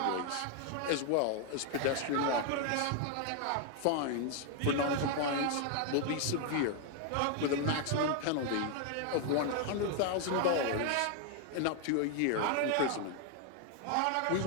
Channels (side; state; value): both; different; correlation 0.00